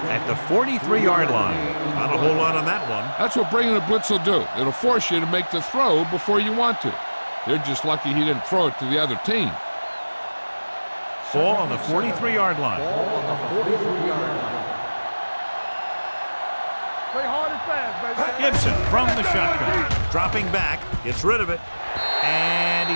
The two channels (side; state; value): both; inverted; correlation -1.00